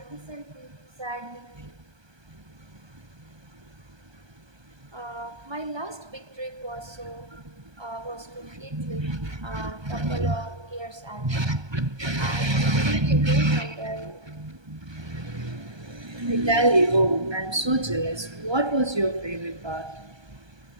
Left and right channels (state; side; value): late; left; 1.2 ms